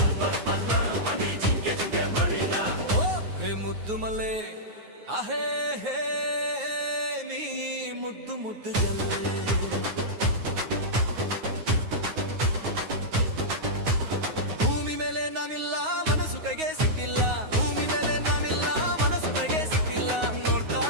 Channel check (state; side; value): late; left; 9.5 ms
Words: ಮುದ್ದು ಮಲೆ ಆಹೇ ಹೇ ನೀ ಮುದ್ದು ಮುದ್ದು ಜಲ್ಲೆ ಭೂಮಿ ಮೇಲೆ ನಾನಿಲ್ಲ ಮನಸ್ಸು ಕೈಗೆ ಸಿಕ್ಕಿಲ್ಲ ಭೂಮಿ ಮೇಲೆ ನಾನಿಲ್ಲ ಮನಸ್ಸು ಕೈಗೆ ಸಿಕ್ಕಿಲ್ಲ